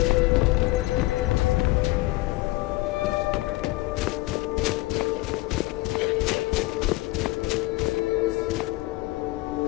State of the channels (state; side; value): quieter; right; 20.0 dB